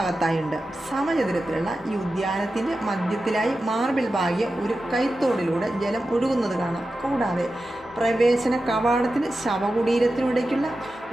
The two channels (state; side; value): normal; both; correlation 0.92